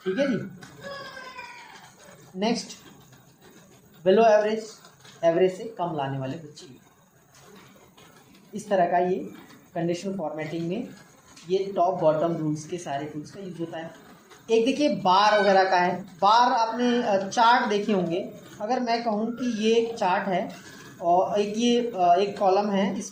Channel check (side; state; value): both; identical; correlation 1.00